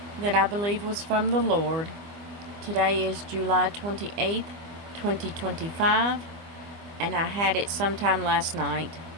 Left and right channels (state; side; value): late; left; 24 ms